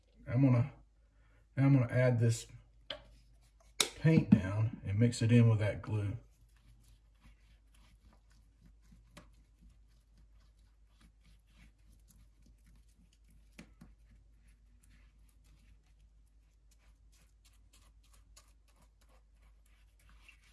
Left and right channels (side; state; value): both; identical; correlation 1.00